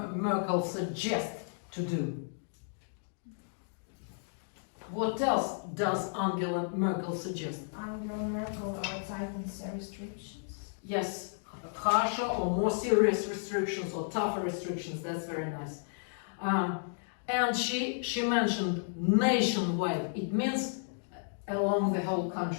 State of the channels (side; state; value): right; silent; digital silence